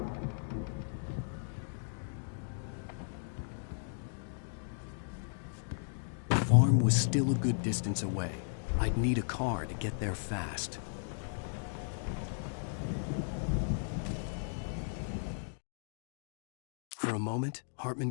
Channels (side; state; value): right; silent; digital silence